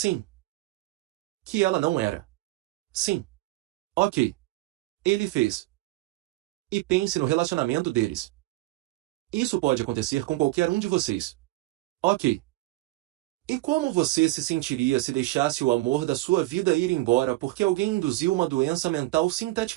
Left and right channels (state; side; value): quieter; left; 18.7 dB